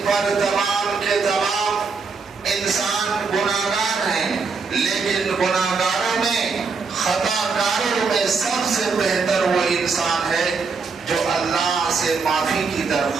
پر تمام کے تمام انسان گناہگار ہیں، لیکن گناہگاروں میں، خطا کاروں میں سب سے بہتر وہ انسان ہے جو اللہ سے معافی کی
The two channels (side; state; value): left; quieter; 4.8 dB